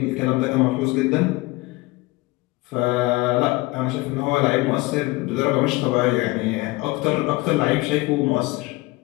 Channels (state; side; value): quieter; right; 22.0 dB